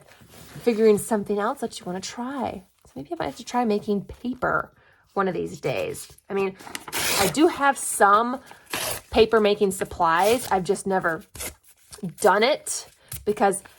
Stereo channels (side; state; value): both; identical; correlation 1.00